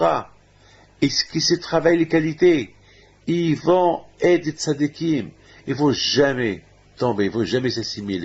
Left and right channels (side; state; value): both; identical; correlation 1.00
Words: et qu'ils se travaillent les qualités, ils vont être des tzadikim, ils ne vont jamais tomber, ils ne vont jamais